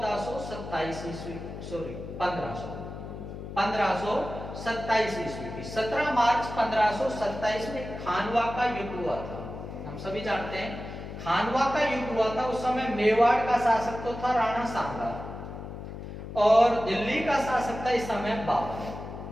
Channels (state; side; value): noise; left; hum, 10 dB below the sound